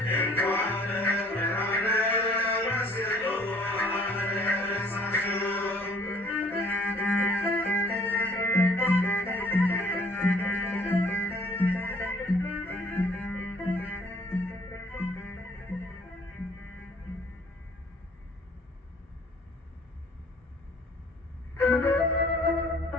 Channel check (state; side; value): normal; both; correlation 0.56